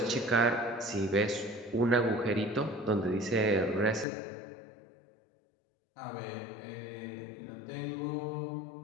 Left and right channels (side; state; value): right; drops out; at 4.0 s